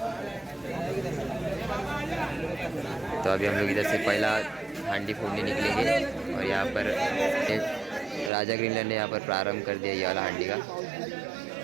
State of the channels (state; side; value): drops out; left; at 8.3 s